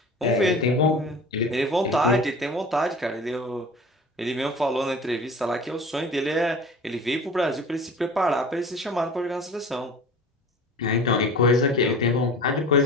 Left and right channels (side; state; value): both; normal; correlation 0.39